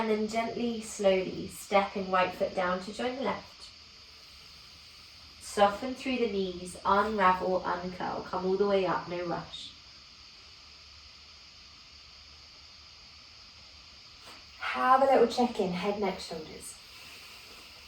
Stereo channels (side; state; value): both; identical; correlation 1.00